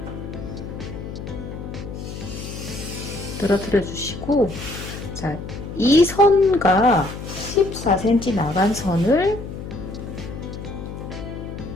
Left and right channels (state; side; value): noise; left; hum, 9 dB below the sound